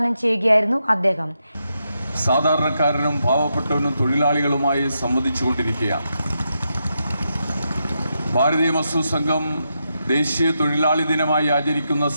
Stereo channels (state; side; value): inverted; both; correlation -0.84